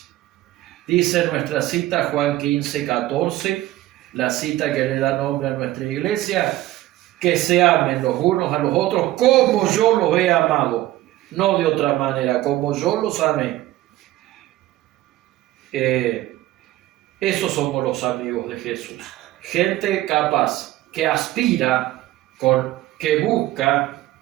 Dice nuestra cita Juan 15:14, la cita que le da nombre a nuestra iglesia, que se amen los unos a los otros como yo los he amado, no de otra manera, como yo los amé. Esos somos los amigos de Jesús. Gente capaz, que aspira, que busca,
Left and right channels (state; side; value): quieter; left; 15.8 dB